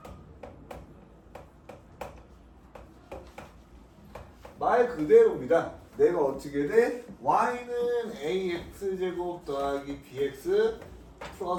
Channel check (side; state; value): both; identical; correlation 1.00